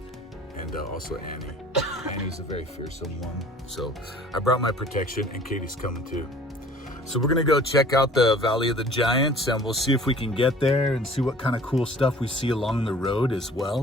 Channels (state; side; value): normal; both; correlation 0.49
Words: And also Annie. Annie's a very fearsome one. So I brought my protection and Katie's coming too. So we're gonna go check out the Valley of the Giants and we'll see if we can get there and see what kind of cool stuff we see along the road as